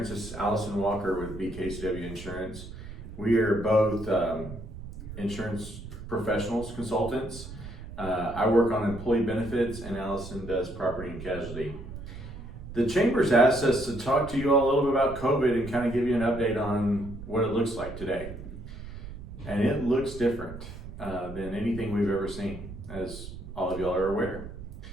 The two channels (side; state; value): right; noise; rumble, 12 dB below the sound